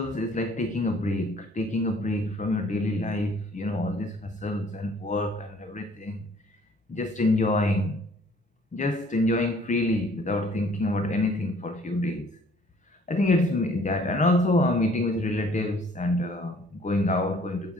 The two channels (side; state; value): both; normal; correlation 0.57